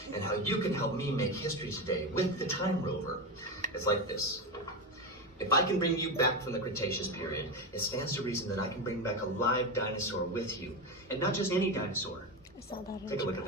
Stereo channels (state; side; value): normal; both; correlation 0.17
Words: and how you can help me make history today with the Time Rover. It's like this. If I can bring you back from the Cretaceous period, it stands to reason that I can bring back a live dinosaur with you. And not just any dinosaur. Take a look at